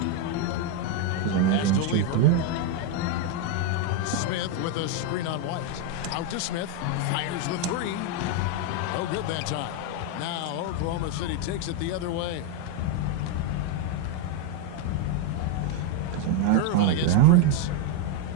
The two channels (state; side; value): different; both; correlation 0.02